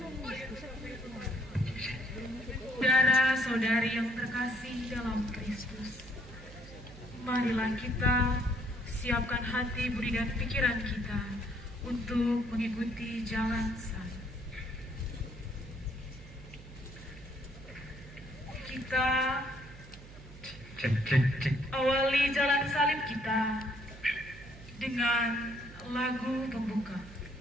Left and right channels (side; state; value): right; noise; hum, 17 dB below the sound